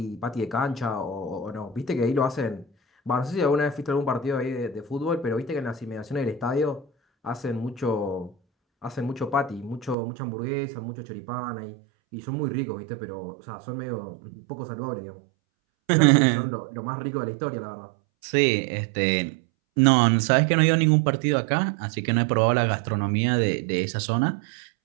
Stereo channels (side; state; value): left; drops out; at 10.0 s